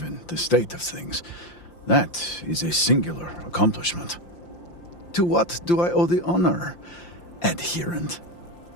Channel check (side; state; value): right; late; 5.8 ms